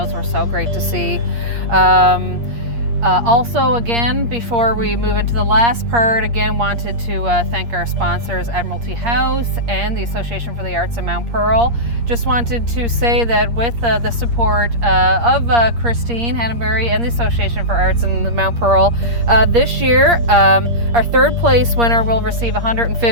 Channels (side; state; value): left; late; 8.5 ms